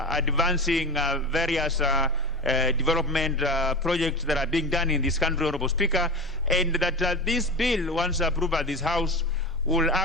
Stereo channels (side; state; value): left; noise; hum, 27 dB below the sound